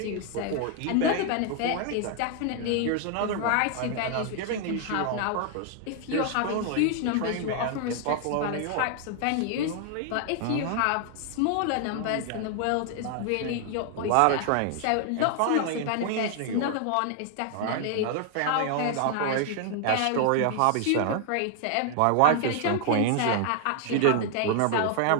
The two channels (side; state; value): both; different; correlation 0.00